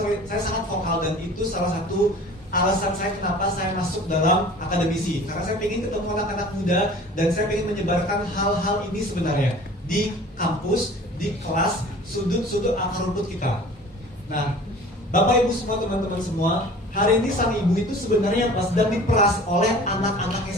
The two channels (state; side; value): normal; both; correlation 0.44